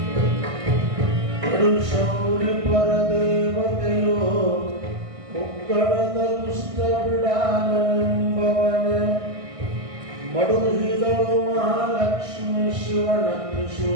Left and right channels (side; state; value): left; late; 1.6 ms